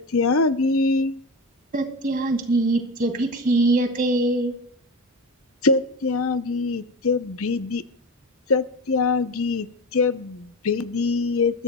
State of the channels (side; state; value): both; normal; correlation 0.24